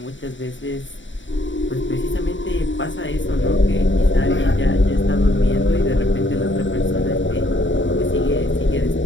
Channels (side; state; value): right; late; 0.55 ms